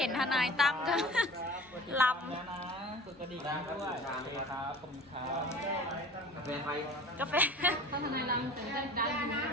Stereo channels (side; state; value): both; normal; correlation 0.42